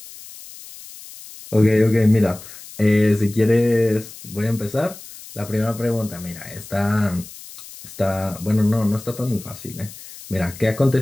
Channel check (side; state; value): left; noise; hiss, 16 dB below the sound